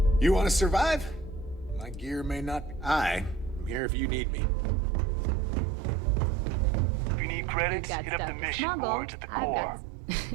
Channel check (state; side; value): drops out; left; at 3.8 s